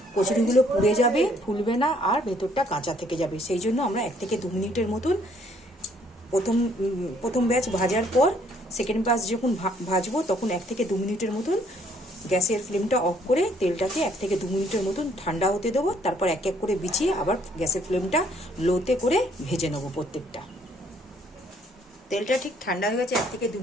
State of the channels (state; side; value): normal; both; correlation 0.65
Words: কচুরিগুলো পুড়ে যাবে, ফুলবে না, আর ভেতরটা কাঁচা থেকে যাবে। সেই জন্য আমরা 1 থেকে 2 মিনিটের মতন প্রথম ব্যাচ ভাজার পর সেকেন্ড ব্যাচ যখন ভাজবো তখন 1 থেকে 2 মিনিটের মতন গ্যাসের ফ্লেমটা অফ করে তেলটাকে 1 থেকে 2 মিনিটের মতন ঠান্ডা হতে দেবো। তারপর এক এক করে বিছিয়ে আবার গ্যাসের ফ্লেমটা লোতে করে ভেজে নেবো প্রত্যেকটা। তেলটা ঠিক ঠান্ডা হয়ে গেছে 1 থেকে 2